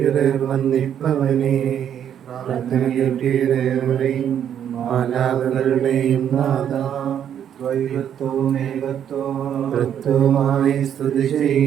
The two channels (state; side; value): quieter; left; 9.3 dB